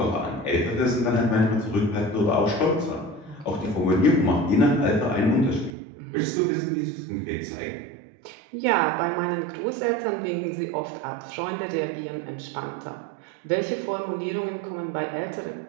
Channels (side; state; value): left; drops out; at 5.7 s